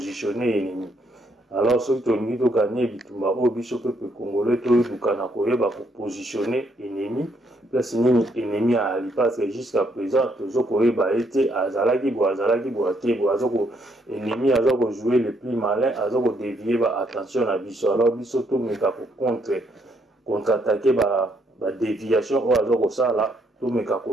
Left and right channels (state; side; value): normal; both; correlation 0.72